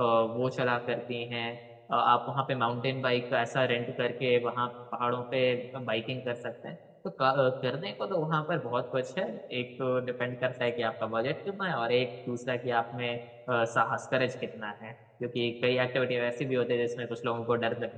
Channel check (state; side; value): identical; both; correlation 1.00